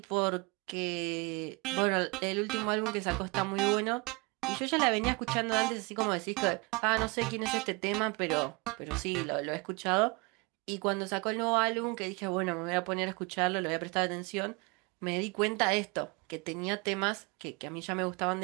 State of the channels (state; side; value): quieter; left; 27.6 dB